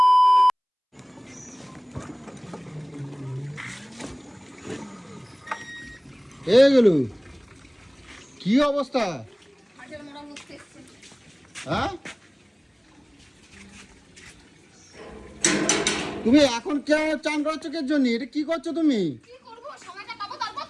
এগুলো কি অবস্থা? হ্যাঁ তুমি এখন কে চান করাচ্ছ কে জন্য? এটা কি করছো তুমি? কি করব, সময়টা পাবো তারপর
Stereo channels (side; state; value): both; identical; correlation 1.00